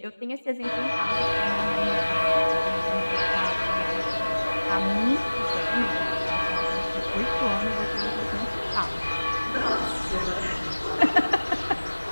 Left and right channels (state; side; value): inverted; both; correlation -1.00